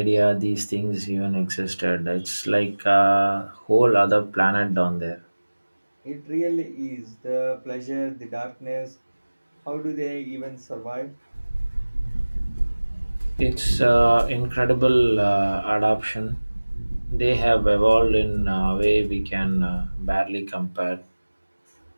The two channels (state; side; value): inverted; both; correlation -1.00